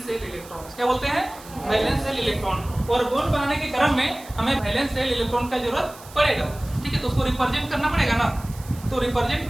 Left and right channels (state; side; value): noise; right; hiss, 19 dB below the sound